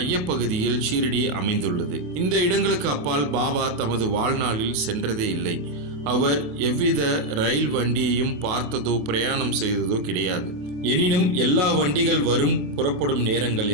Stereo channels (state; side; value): late; left; 28 ms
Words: ஷிரடி அமைந்துள்ளது. இந்த இடங்களுக்கு அப்பால் பாபா தமது வாழ்நாளில் சென்றதே இல்லை. அவர் எவ்வித ரயில் வண்டியையும் பார்த்ததோ பிரயாணம் செய்ததோ கிடையாது. எனினும் எல்லா வண்டிகள் வரும் புறப்படும் நேரங்கள்